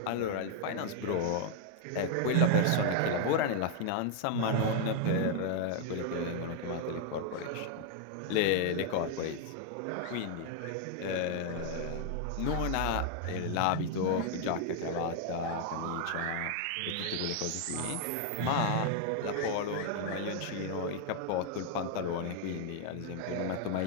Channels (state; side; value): different; both; correlation 0.00